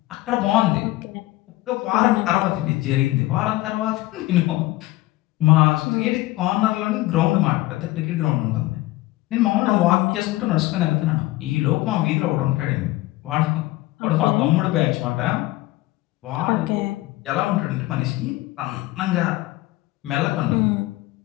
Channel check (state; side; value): quieter; right; 18.3 dB